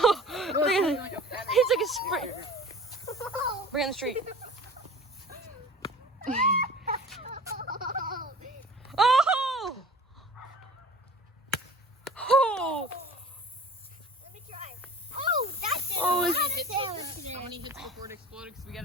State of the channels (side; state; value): both; normal; correlation 0.42